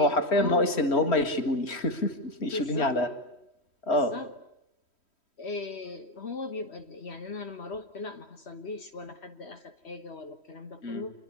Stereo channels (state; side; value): late; right; 3.1 ms